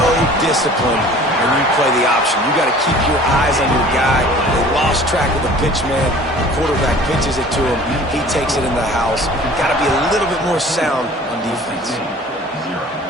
disciplined when you play the option. You got to keep your eyes on your guy. They lost track of the pitch, man. The quarterback pitches it to him. He takes it in the house. Got to be a little bit more sound on defense.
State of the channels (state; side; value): normal; both; correlation 0.47